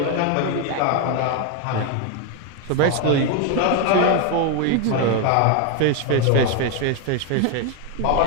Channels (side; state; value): both; different; correlation 0.01